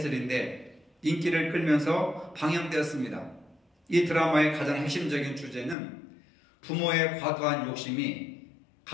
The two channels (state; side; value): drops out; right; at 5.8 s